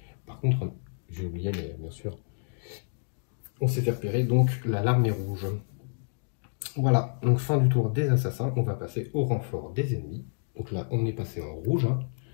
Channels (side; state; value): right; silent; digital silence